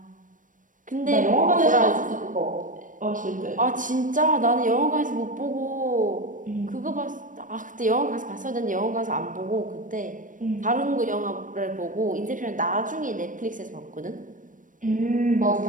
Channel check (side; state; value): left; late; 0.38 ms